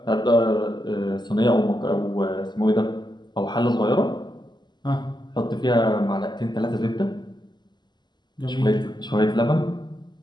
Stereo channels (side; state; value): right; late; 0.21 ms